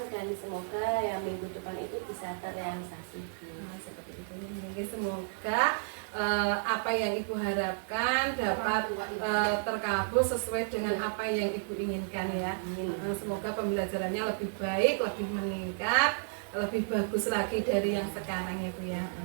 dan semoga ya minggu depan itu bisa terrealisasi. Nah, seperti itu. Mungkin semoga apa yang Ibu harapkan dapat terkabul sesuai dengan apa yang Ibu inginkan ya. Semoga pembelajarannya lebih baik, lebih meningkat, lebih bagus lagi dari yang sekarang ya Bu ya.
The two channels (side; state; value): left; silent; digital silence